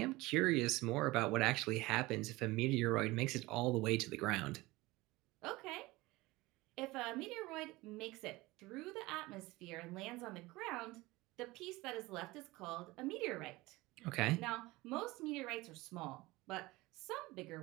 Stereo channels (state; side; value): quieter; left; 20.6 dB